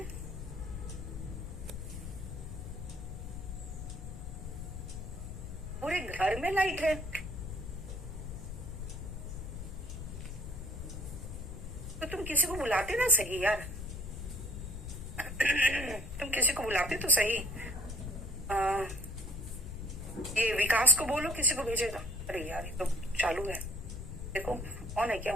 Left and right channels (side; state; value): left; noise; rumble, 7 dB below the sound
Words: पूरे घर में लाइट है। तो तुम किसी को बुलाते ना सही यार। तुम किसी को बुलाते तो सही। ये विकास को बोलो, किसी को भेजेगा। अरे यार ये तो चालू है, देखो ऑन है क्या?